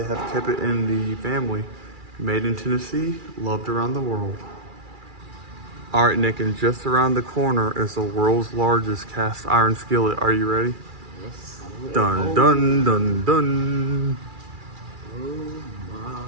have kept it in the family. Made in Tennessee, loved around the world. All right, Nick, and just around the corner is the world's largest cast iron skillet. Are you ready? Yes. Dun, dun, dun, dun. Oh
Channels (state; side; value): late; left; 2.4 ms